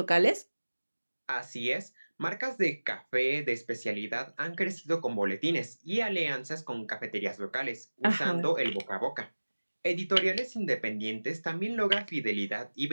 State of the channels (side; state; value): both; inverted; correlation -1.00